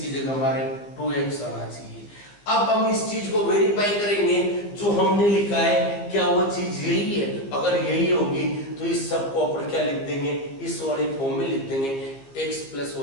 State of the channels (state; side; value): late; right; 15 ms